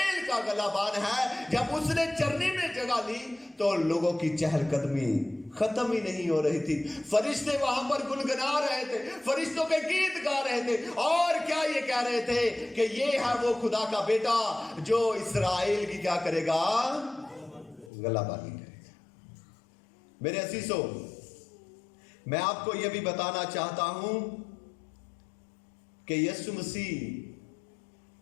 کا غلبان ہے، جب اس نے چرنی میں جگہ لی تو لوگوں کی چہل قدمی ختم ہی نہیں ہو رہی تھی۔ فرشتے وہاں پر گنگنا رہے تھے، فرشتوں کے گیت گا رہے تھے، اور کیا یہ کہہ رہے تھے کہ یہ ہے وہ خدا کا بیٹا جو اسرائیل کی کیا کرے گا؟ غلبانی کرے گا۔ میرے عزیزو، میں آپ کو یہ بھی بتانا چاہتا ہوں کہ یسوع مسیح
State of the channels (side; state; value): right; drops out; at 17.9 s